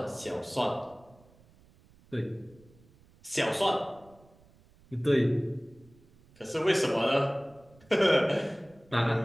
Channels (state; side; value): noise; right; rumble, 28 dB below the sound